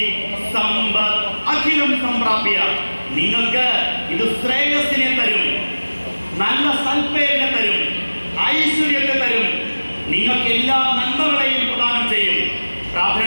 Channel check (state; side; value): inverted; both; correlation -1.00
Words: സമ്പത്ത് അഖിലം സംപ്രാപ്യ. നിങ്ങൾക്ക് ഇത് ശ്രേയസ്സിനെ തരും, നല്ല സൽപ്പേരിനെ തരും, ഐശ്വര്യത്തെ തരും, നിങ്ങൾക്ക് എല്ലാ നന്മകളെയും പ്രദാനം ചെയ്യും.